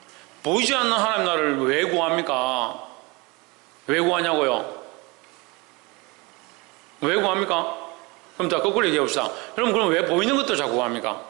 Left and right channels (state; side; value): quieter; left; 26.0 dB